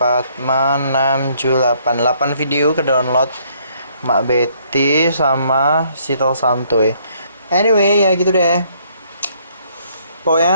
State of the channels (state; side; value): inverted; both; correlation -0.66